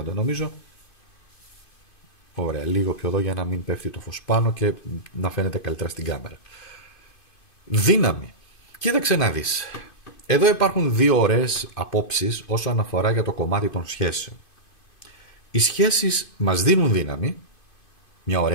νομίζω. Ωραία, λίγο πιο εδώ για να μην πέφτει το φως πάνω και να φαίνεται καλύτερα στην κάμερα. Δύναμη. Κοίταξε να δεις. Εδώ υπάρχουν δύο ωραίες απόψεις όσον αφορά για το κομμάτι των σχέσεων. Οι σχέσεις μας δίνουν δύναμη. Μια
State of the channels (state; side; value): late; right; 2.5 ms